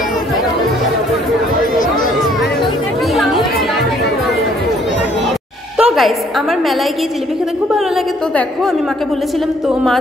তো গাইস আমার মেলায় গিয়ে জিলিপি খেতে খুব ভালো লাগে। তো দেখো আমি মাকে বলেছিলাম, তো মা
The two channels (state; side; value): normal; both; correlation 0.63